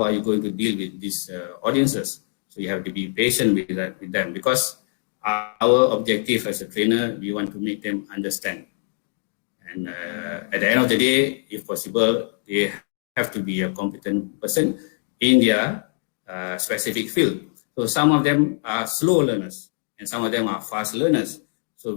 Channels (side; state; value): right; silent; digital silence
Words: are you going to deal with these audiences? So you have to be patient with them, because our objective as a trainer, we want to make them understand. And at the end of the day, if possible, they have to be a competent person in their specific field. So some of them are slow learners and some of them are fast learners. So